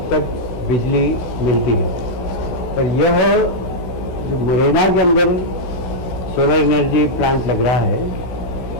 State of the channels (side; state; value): right; late; 16 ms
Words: तक बिजली मिलती है, पर यह जो मुरैना के अंदर सोलर एनर्जी प्लांट लग रहा है,